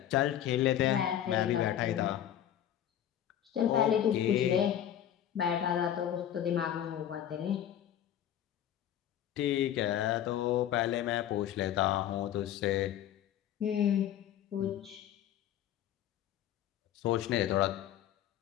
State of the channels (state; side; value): quieter; right; 10.9 dB